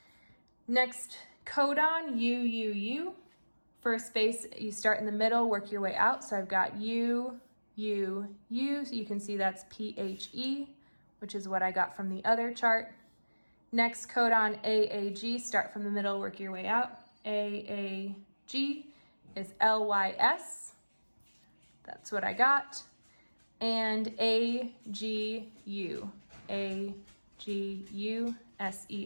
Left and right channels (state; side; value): inverted; both; correlation -1.00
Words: Next codon, UUU. First base, you start in the middle, work your way out. So I've got U, U, U. So you can see that's PHE, which is what I got from the other chart. Next codon AAG, start from the middle, work your way out. AAG. is LYS. That's what I got. And AGU, AGUSER.